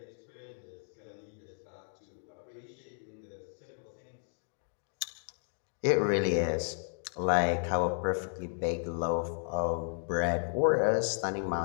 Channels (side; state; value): right; silent; 55 dB below the other